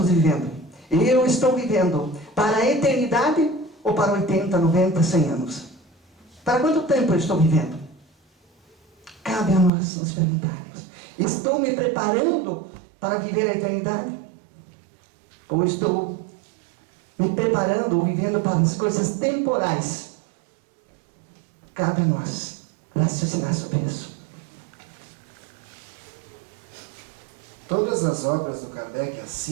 vivendo? Eu estou vivendo para a eternidade ou para 80, 90, 100 anos? Para quanto tempo eu estou vivendo? Cabe a nós nos perguntarmos: estou me preparando para viver a eternidade? Ou estou me preparando ou vivendo para as coisas temporais? Cabe a nós raciocinar sobre isso. Todas as obras do Kardec, as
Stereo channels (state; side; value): drops out; left; at 9.7 s